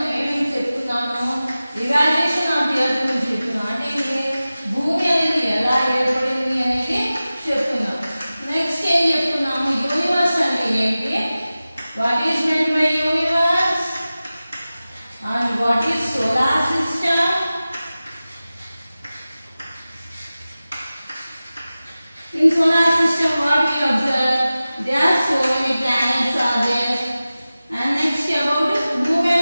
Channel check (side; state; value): both; inverted; correlation -0.96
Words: ఏమేమి చెప్పుకున్నాము ఇవాల్యుయేషన్ ఆఫ్ ది ఎర్త్ గురించి చెప్పుకున్నాం అంటే భూమి అనేది ఎలా ఏర్పడింది అనేది చెప్పుకున్నాం నెక్స్ట్ ఏం చెప్పుకున్నాము యూనివర్స్ అంటే ఏంటి what is meant by universe and what is solar system In solar system, what we observe, there are so many planets are there. And next about